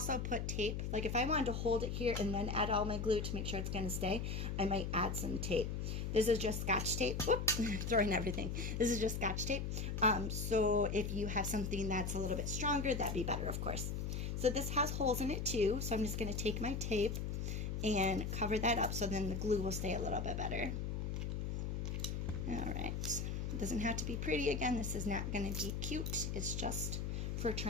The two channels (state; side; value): noise; left; hum, 2 dB below the sound